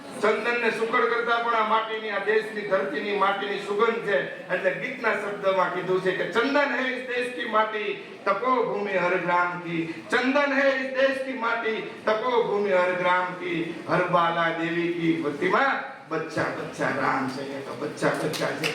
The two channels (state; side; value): identical; both; correlation 1.00